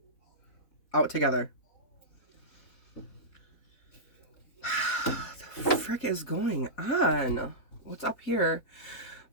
out together. The frick is going on? What's up here?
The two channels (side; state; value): right; late; 4.0 ms